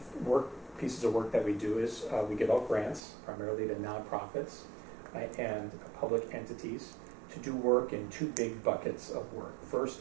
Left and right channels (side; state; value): left; drops out; at 3.0 s